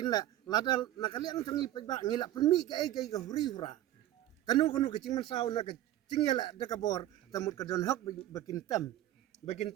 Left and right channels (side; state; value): left; quieter; 13.5 dB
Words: la ladal nakaliang cong ipaj ba ngilak penmi ka ai ka huri hura kanu kecing mansau nak kecing ya dak bor temut ka don hok bakin